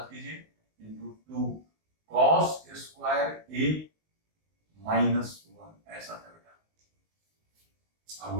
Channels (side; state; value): left; late; 19 ms